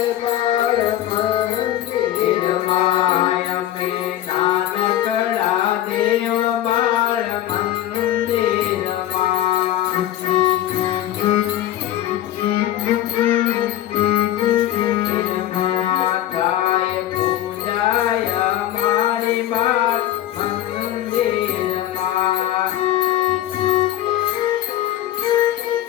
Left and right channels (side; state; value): right; quieter; 13.0 dB